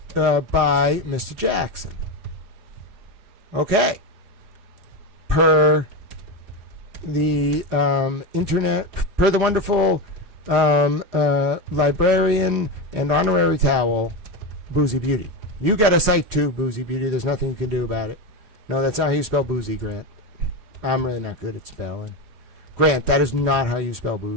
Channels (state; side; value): late; left; 4.8 ms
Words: by Mr. Jackson. Okay. Per the internet, per the wonderful librarian and honorary towel, Boozy Beauty. You got a site too, Boozy Beauty. There's nothing you can do about it. No, that's not how you spell boozy, Grant. I'm really not good at spelling. Grant, that is not how you spell